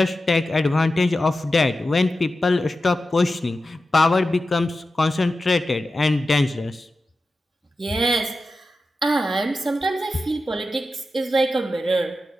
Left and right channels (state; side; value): normal; both; correlation 0.92